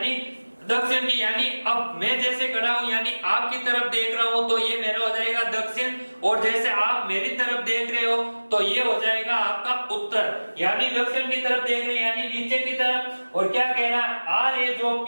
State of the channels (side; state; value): both; inverted; correlation -1.00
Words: दक्षिण की। यानी अब मैं जैसे खड़ा हूं, यानी आपकी तरफ देख रहा हूं तो ये मेरा हो जाएगा दक्षिण, और जैसे आप मेरी तरफ देख रहे हो तो ये हो जाएगा आपका उत्तर। यानी दक्षिण की तरफ देख रहे हैं, यानी नीचे की तरफ। और क्या कह रहा है? R है जो